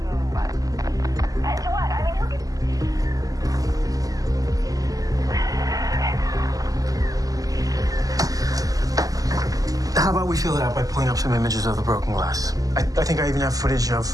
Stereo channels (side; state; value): left; late; 0.17 ms